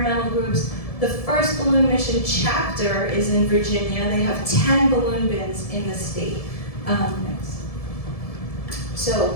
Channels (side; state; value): right; late; 1.7 ms